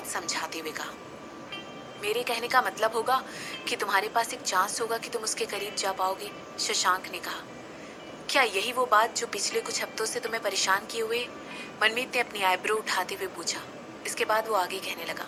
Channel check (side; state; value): both; identical; correlation 1.00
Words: समझाते हुए कहा। मेरे कहने का मतलब होगा कि तुम्हारे पास एक चांस होगा कि तुम उसके करीब जा पाओगे, शशांक ने कहा। क्या यही वो बात जो पिछले कुछ हफ्तों से तुम्हें परेशान किए हुए? मनमीत ने अपनी आईब्रो उठाते हुए पूछा। इसके बाद वो आगे कहने लगा।